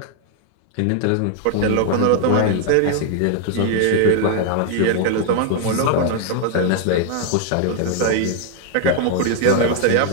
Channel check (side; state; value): both; different; correlation 0.00